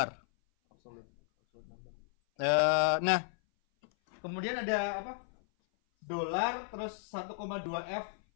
Nah, kemudian ada apa? Dolar terus 1,2f.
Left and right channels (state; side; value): silent; right; 55 dB below the other